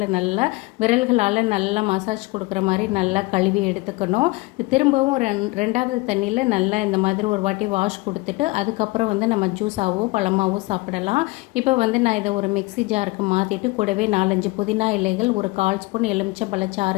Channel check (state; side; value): quieter; right; 22.8 dB